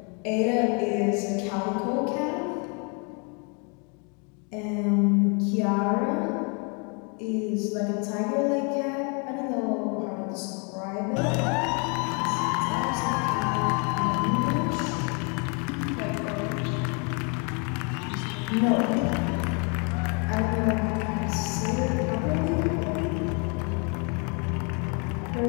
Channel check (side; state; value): right; quieter; 35.4 dB